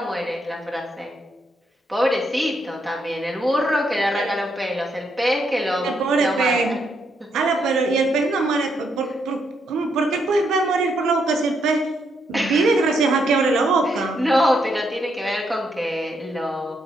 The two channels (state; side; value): normal; both; correlation 0.77